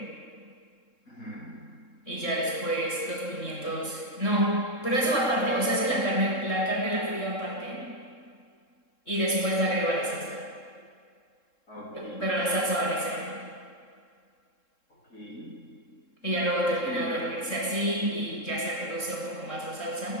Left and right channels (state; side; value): late; right; 3.7 ms